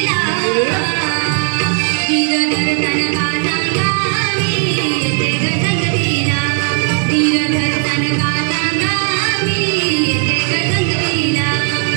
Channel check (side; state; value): left; quieter; 39.1 dB